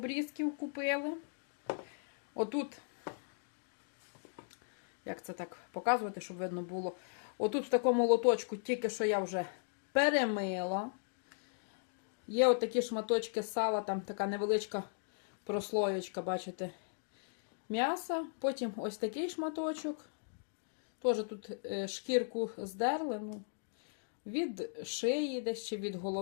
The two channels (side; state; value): right; silent; digital silence